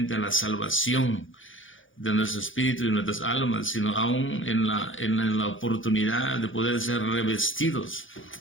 a la salvación de nuestro espíritu y nuestras almas, sino aún en la oportunidad de poder ser revestidos,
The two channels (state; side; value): late; right; 0.57 ms